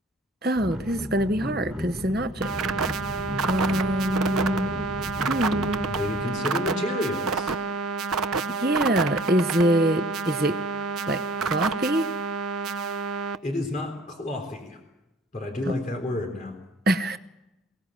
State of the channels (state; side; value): normal; both; correlation 0.52